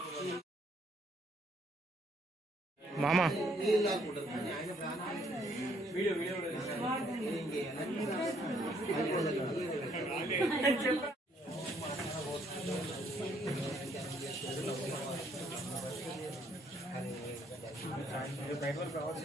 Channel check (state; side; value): normal; both; correlation 0.68